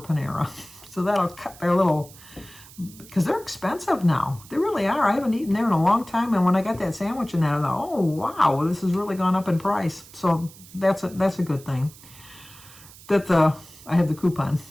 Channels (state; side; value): noise; right; hiss, 20 dB below the sound